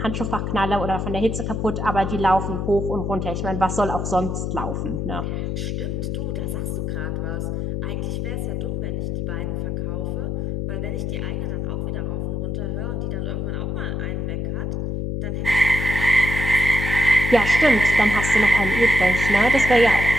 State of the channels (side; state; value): left; noise; hum, 2 dB below the sound